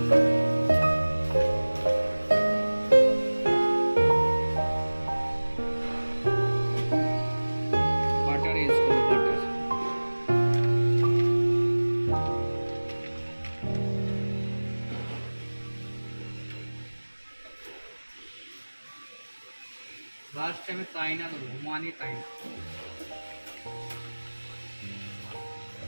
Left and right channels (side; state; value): both; inverted; correlation -1.00